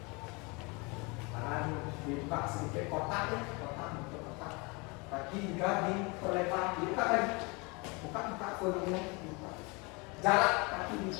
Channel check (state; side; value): quieter; right; 28.3 dB